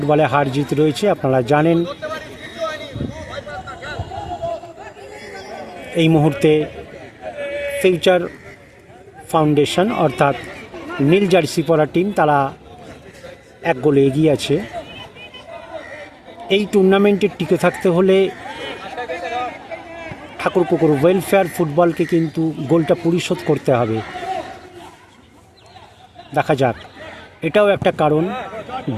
হার জিত রয়েছে, আপনারা জানেন। এই মুহূর্তে ফিউচার ফাউন্ডেশন অর্থাৎ নীল জার্সি পরা টিম, তারা 1 গোলে এগিয়ে আছে। এই টুর্নামেন্টে টিকে থাকতে হলে ঠাকুরপুকুর ওয়েলফেয়ার ফুটবলকে কিন্তু গোলটা পরিশোধ করতে হবে। দেখা যাক, এটাও একটা কারণ।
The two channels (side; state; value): both; identical; correlation 1.00